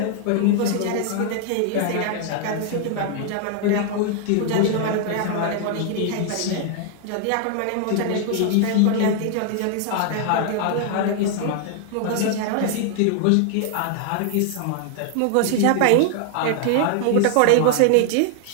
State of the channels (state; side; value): different; both; correlation 0.00